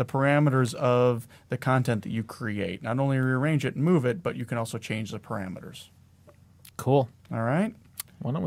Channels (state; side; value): identical; both; correlation 1.00